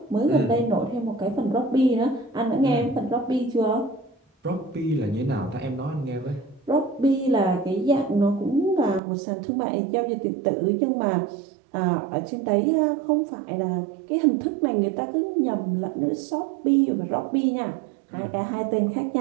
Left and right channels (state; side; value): drops out; left; at 9.0 s